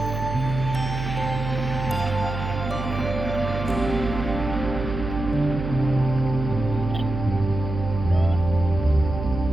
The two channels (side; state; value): right; noise; hum, 5 dB below the sound